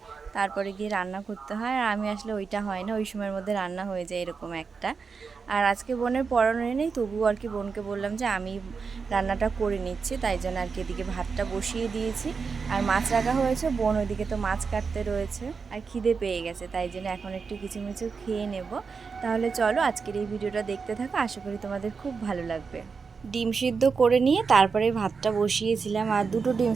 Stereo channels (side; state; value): left; quieter; 5.2 dB